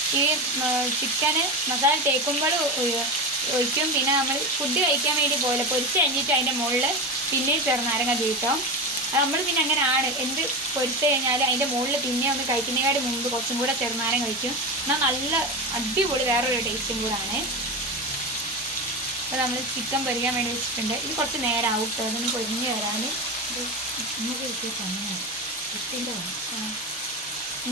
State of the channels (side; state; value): both; normal; correlation 0.21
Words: ഈ ചിക്കന് മസാല തേക്കുമ്പോൾ ഒഴിക്കും. പിന്നെ നമ്മൾ ഫുഡ് കഴിക്കാൻ വേണ്ടി പോലെ പൊരിച്ച് കഴിഞ്ഞിട്ട് അതിൻ്റെ മുകളിൽ പിന്നെയും ചെറുനാരങ്ങ തീട്ടോ. അത് നമ്മൾ പിന്നെ അങ്ങനെ ആണ് എന്ത് പൊരിച്ച് കഴിഞ്ഞാൽ അതിൻ്റെ മുകളിൽ പിന്നെ ഒന്ന് കഴിക്കുന്നതിനേക്കാട് മുമ്പ് കുറച്ചും കൂടെ ചെറുനാരങ്ങ കഴിക്കും. എന്നാൽ നല്ല അടിപൊളി വേറൊരു ടേസ്റ്റും കൂടാണ്. അപ്പോൾ നമ്മൾ ചിക്കൻ പൊരിക്കാൻ വേണ്ടി വെച്ചിട്ടുണ്ട്. ഇത് കുറച്ച് നേരം ആവും കേട്ടോ അതൊന്ന് പൊരിഞ്ഞ് വരാൻ. നമുക്ക് കിട്ടിയ പണിയാണ്.